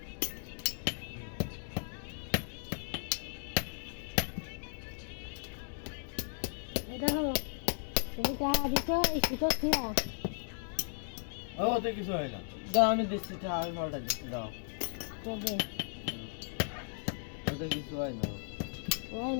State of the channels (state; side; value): silent; right; digital silence